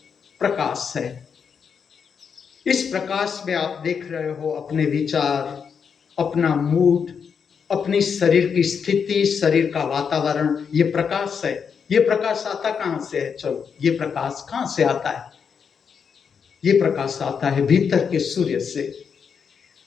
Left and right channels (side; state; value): right; quieter; 6.6 dB